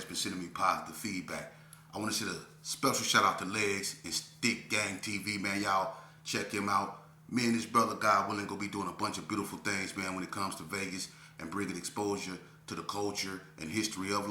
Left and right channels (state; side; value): identical; both; correlation 1.00